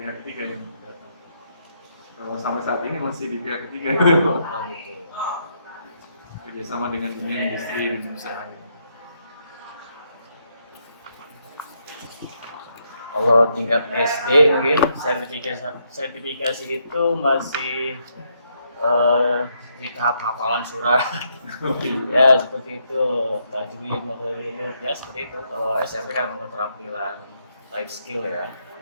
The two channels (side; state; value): both; inverted; correlation -0.76